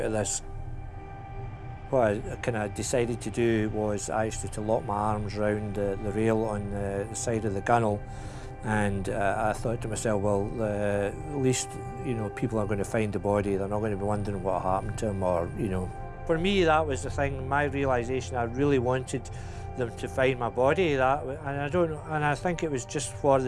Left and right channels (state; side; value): identical; both; correlation 1.00